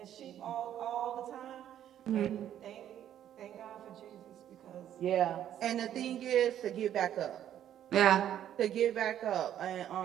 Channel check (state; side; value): quieter; left; 10.8 dB